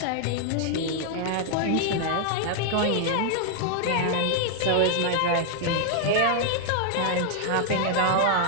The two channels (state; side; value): different; both; correlation 0.00